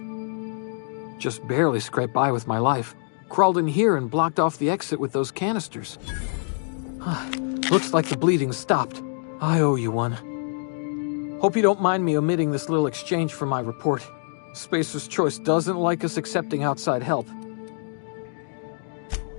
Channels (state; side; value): silent; right; digital silence